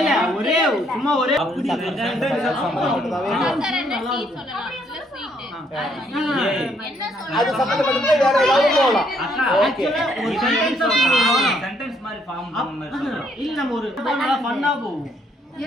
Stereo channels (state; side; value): normal; both; correlation 0.70